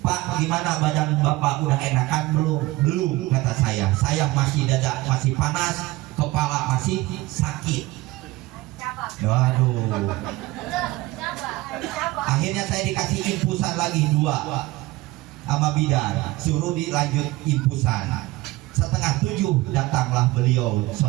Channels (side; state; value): left; quieter; 19.2 dB